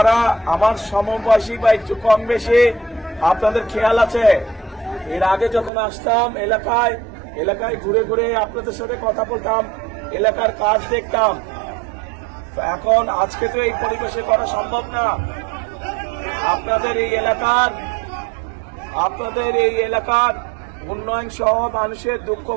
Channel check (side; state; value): left; drops out; at 5.7 s